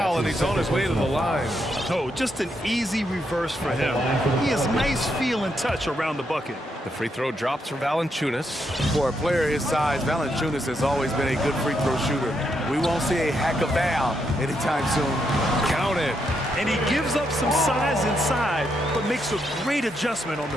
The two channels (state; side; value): normal; both; correlation 0.80